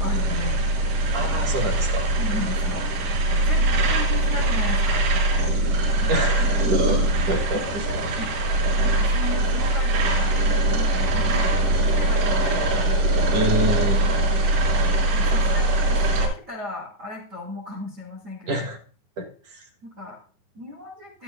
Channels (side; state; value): left; late; 10 ms